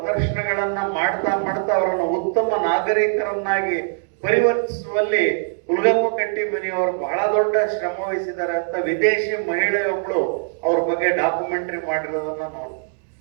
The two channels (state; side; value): silent; left; digital silence